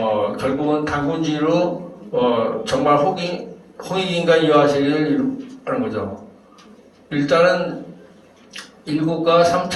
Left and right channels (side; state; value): both; identical; correlation 1.00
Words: 결국은 단군주의로 정말 홍익인간 이화세계를 이루는 거죠. 일단은 일국가